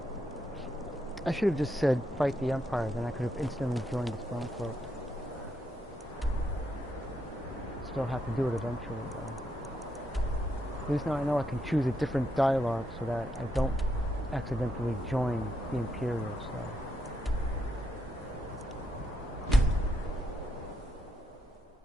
I should have just said, fight the Empire, then I could have instantly joined the Stormcloak. Still have to do it eventually, though. At least now I know I can choose a different dialogue so that I don't accidentally join the Imperial side.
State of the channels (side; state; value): both; normal; correlation 0.80